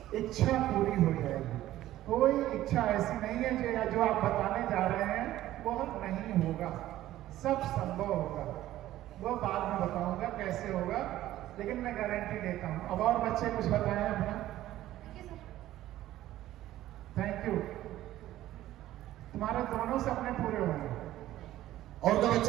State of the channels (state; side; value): quieter; left; 14.3 dB